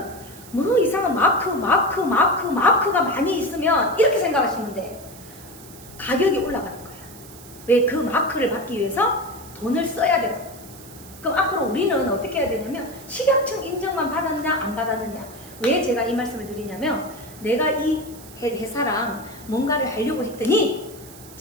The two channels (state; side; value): noise; right; hiss, 19 dB below the sound